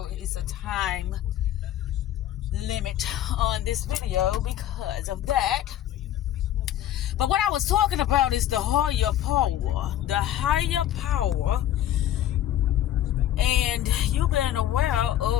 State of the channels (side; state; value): right; quieter; 12.1 dB